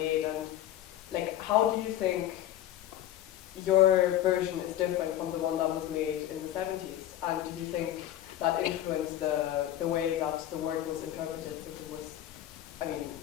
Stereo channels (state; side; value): quieter; right; 12.5 dB